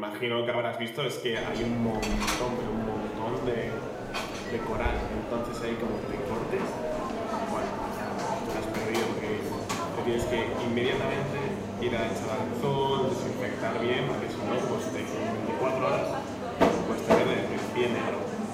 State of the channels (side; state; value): both; identical; correlation 1.00